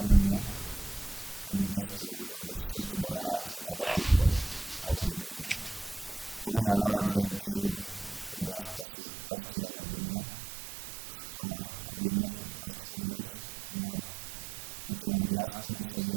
here and just to show to the world and other people how we've been moving around here in KU for the past years I've been here. So far, I've been here for the past 4 years, and now making my last moves, I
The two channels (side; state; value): left; drops out; at 8.8 s